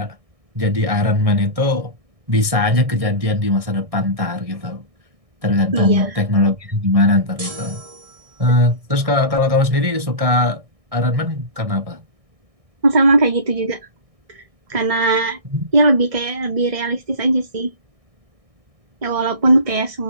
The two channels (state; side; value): late; left; 1.6 ms